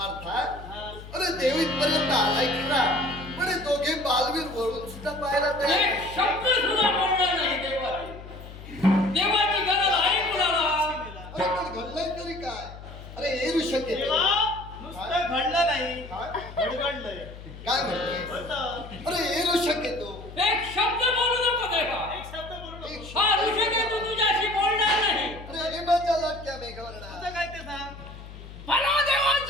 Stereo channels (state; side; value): noise; left; hum, 14 dB below the sound